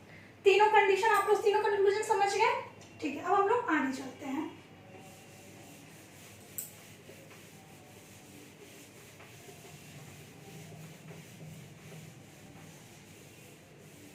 तीनों कंडीशन आप लोग तीनों कंक्लूजन समझ गए, ठीक है। अब हम लोग आगे चलते हैं।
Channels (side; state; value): both; identical; correlation 1.00